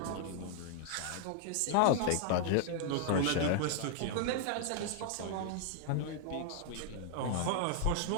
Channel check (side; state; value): both; different; correlation -0.01